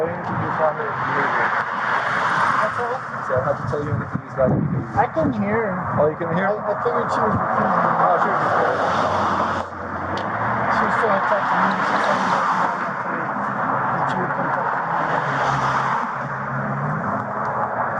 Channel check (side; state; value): both; identical; correlation 1.00